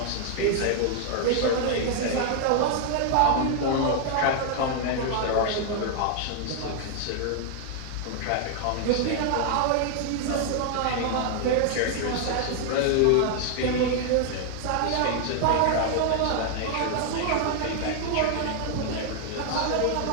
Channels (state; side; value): different; both; correlation 0.00